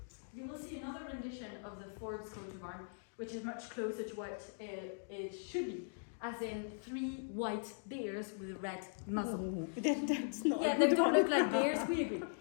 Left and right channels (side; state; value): right; silent; digital silence